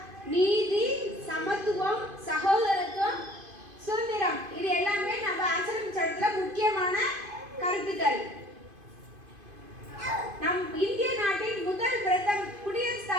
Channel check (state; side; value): late; left; 2.5 ms